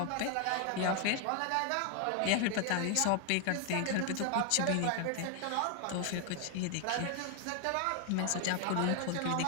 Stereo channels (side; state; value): both; different; correlation 0.00